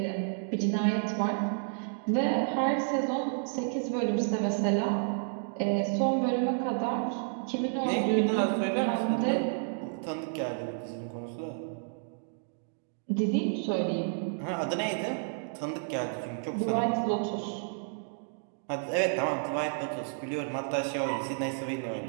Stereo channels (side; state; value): left; silent; digital silence